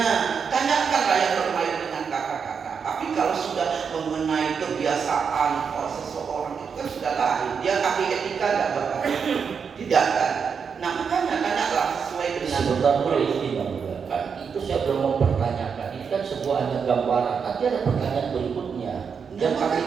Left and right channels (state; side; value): quieter; left; 6.3 dB